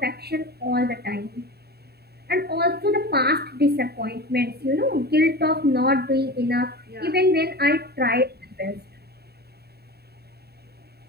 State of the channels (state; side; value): late; left; 0.47 ms